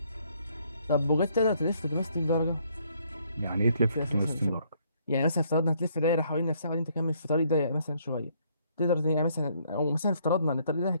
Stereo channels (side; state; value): both; inverted; correlation -0.67